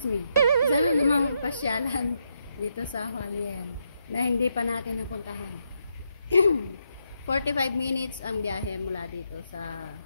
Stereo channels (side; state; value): both; inverted; correlation -0.80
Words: pasyalan dito sa Hualien na hindi pa natin napuntahan. 45 minutes ang biyahe mula dito sa